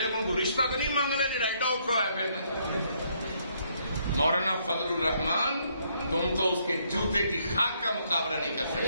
کو رشتہ تو نہیں مانگ لیا جڑا ایڈا اوکھا ہے پھر مولانا فضل الرحمان، تم تو اس کے جوتے کی خاک کا مقابلہ نہیں کر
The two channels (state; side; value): inverted; both; correlation -0.71